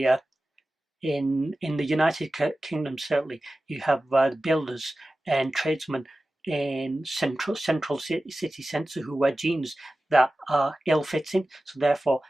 in the United Kingdom, certainly you have builders and tradesmen in central city centre who wear jeans that are ill-fitting, so therefore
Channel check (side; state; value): both; normal; correlation 0.95